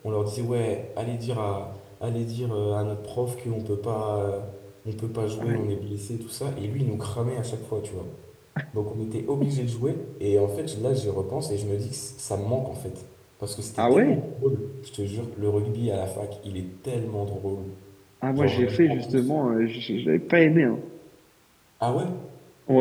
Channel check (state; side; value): identical; both; correlation 1.00